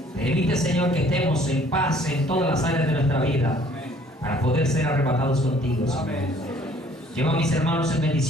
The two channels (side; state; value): both; normal; correlation 0.57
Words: Permite, Señor, que estemos en paz en todas las áreas de nuestra vida para poder ser arrebatados contigo, Señor. Lleva a mis hermanos en